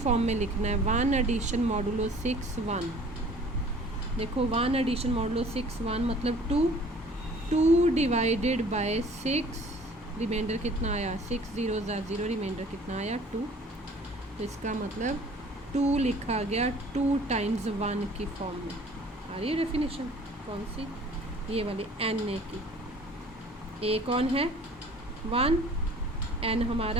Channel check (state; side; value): normal; both; correlation 0.50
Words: में लिखना है, 1 एडिशन मॉडुलो 6 1। देखो 1 एडिशन मॉडुलो 6 1 मतलब 2 डिवाइडेड बाय 6, रिमाइंडर कितना आया, 6 0 0, रिमाइंडर कितना आया 2, तो इसका मतलब 2 लिखा गया 2 टाइम्स 1 की फॉर्म में। आ रही है डेफिनेशन कौन सी, ये वाली एन ए की। ए कौन है, 1, एन